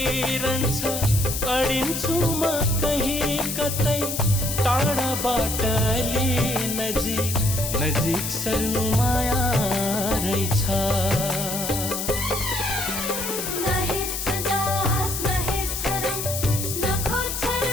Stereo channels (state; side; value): noise; left; hiss, 4 dB below the sound